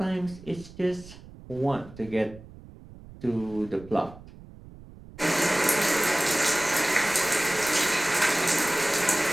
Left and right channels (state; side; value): noise; right; rumble, 19 dB below the sound